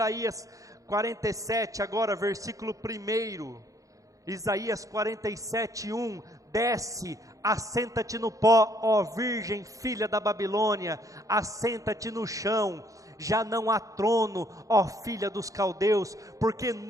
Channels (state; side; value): late; left; 0.16 ms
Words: 47, agora versículo 1. Isaías 47, 1. Desce, assenta-te no pó, ó virgem, filha da Babilônia, assenta-te no chão. Já não há trono, ó filha dos caldeus, porque